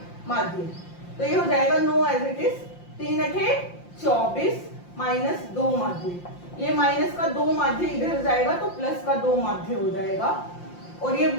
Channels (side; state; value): right; late; 5.7 ms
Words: माध्य। तो ये हो जाएगा 9 एज इट इज, 3 8 24 माइनस 2 माध्य। ये माइनस का 2 माध्य इधर जाएगा तो प्लस का 2 माध्य हो जाएगा, और ये